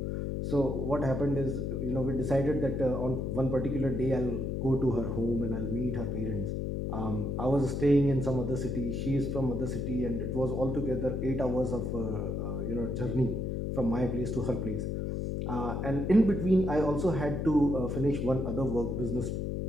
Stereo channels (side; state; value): left; noise; hum, 1 dB below the sound